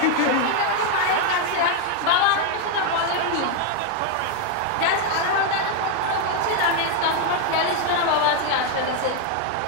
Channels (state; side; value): different; both; correlation 0.01